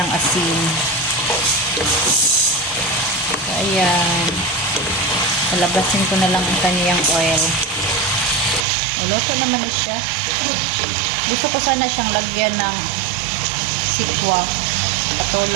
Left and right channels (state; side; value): drops out; left; at 8.7 s